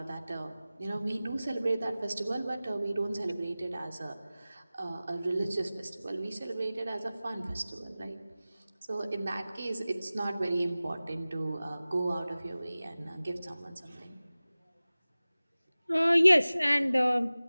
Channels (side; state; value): both; inverted; correlation -0.98